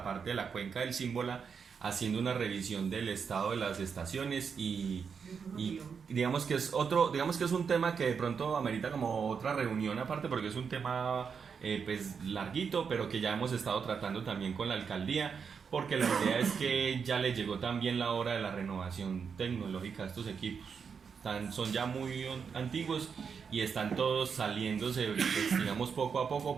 parte de la cuenca del Símbola, haciendo una revisión del estado de las estaciones y digamos que es un tema que de pronto amerita como otra reunión aparte, porque es un tema pues larguito, pero que ya hemos estado tratando también con la alcaldía, porque la idea es que ya le llegó también la hora de la renovación tecnológica de estos equipos. Son ya muy antiguos y están todos saliéndose, pues, digamos, poco a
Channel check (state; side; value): quieter; left; 6.2 dB